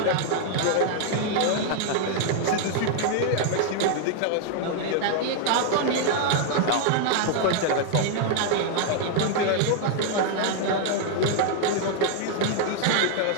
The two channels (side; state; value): both; different; correlation 0.00